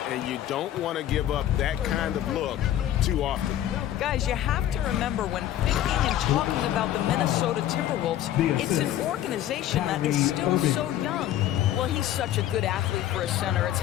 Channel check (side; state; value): right; quieter; 12.3 dB